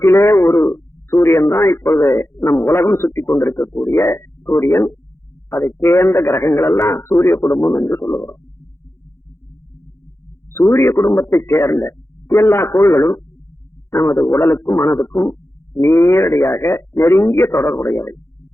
ஒரு சூரியன் தான் இப்பொழுது நம் உலகம் சுற்றி கொண்டிருக்கக்கூடிய சூரியன். அதை சேர்ந்த கிரகங்கள் எல்லாம் சூரிய குடும்பம் என்று சொல்லுகிறோம். சூரிய குடும்பத்தை சேர்ந்த எல்லா கோள்களும் நமது உடலுக்கும் மனதுக்கும் நேரடியாக நெருங்கிய தொடர்புடையவை.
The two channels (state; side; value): late; right; 0.13 ms